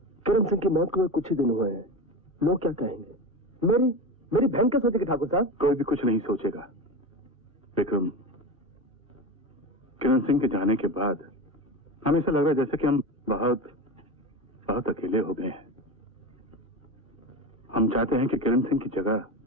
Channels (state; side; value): normal; both; correlation 0.23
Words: किरण सिंह की मौत को कुछ ही दिन हुए हैं। लोग क्या कहेंगे? मेरी बहन क्या सोचेगी ठाकुर साहब? कोई भी कुछ नहीं सोचेगा। विक्रम, किरण सिंह के जाने के बाद हमें ऐसा लग रहा है जैसे कि हम बहुत बहुत अकेले हो गए हैं। हम चाहते हैं कि किरण सिंह की जगह